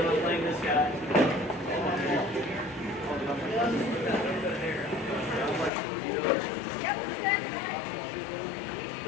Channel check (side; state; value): right; drops out; at 5.7 s